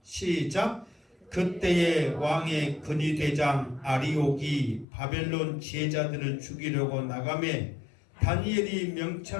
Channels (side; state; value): right; drops out; at 4.9 s